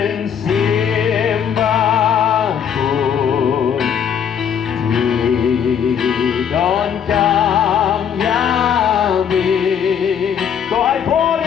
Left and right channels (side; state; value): right; quieter; 8.2 dB